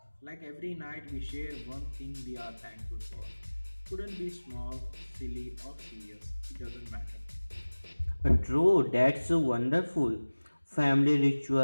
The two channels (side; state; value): both; inverted; correlation -1.00